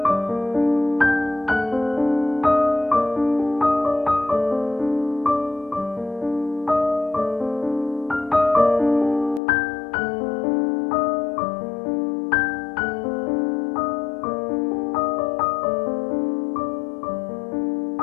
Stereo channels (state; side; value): drops out; right; at 9.4 s